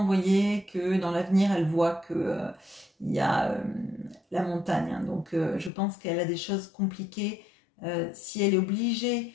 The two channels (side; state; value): right; drops out; at 5.7 s